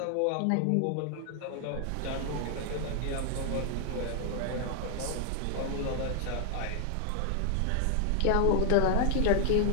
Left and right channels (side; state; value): both; different; correlation 0.00